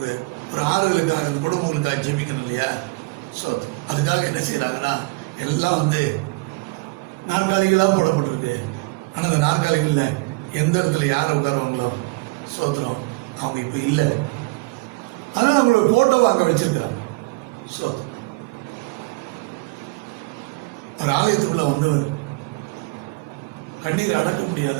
ஒரு ஆறுதலுக்காக குடும்பங்களுக்காக ஜெபிக்கணும் இல்லையா. ஸோ அதுக்காக என்ன செய்யறாங்கன்னா, எல்லாம் வந்து நாற்காலிகளாக போடப்பட்டிருக்கு. ஆனால் அந்த நாற்காலிகளில் எந்த இடத்துல யார் உட்காருவாங்களோ சோத்திரம் அவங்க இப்போ இல்லை. அதனால் அவங்களோட போட்டோவை அங்கே வச்சிருக்கிறாங்க. சோத்திரம். ஒரு ஆலயத்துக்குள்ள வந்தவர் கண்ணீரை அடக்க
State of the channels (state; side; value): quieter; left; 26.3 dB